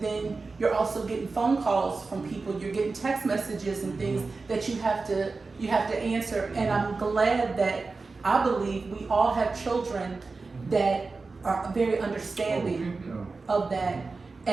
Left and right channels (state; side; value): quieter; left; 4.0 dB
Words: then you're also getting phone calls from people, you're getting text messages and things that you have to answer. And I'm glad that I believe we all have children that are very understanding of that.